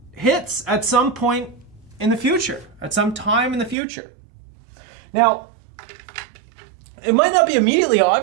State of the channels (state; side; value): drops out; left; at 3.8 s